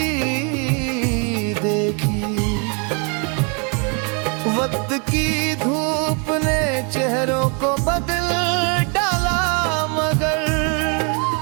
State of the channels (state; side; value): quieter; left; 36.2 dB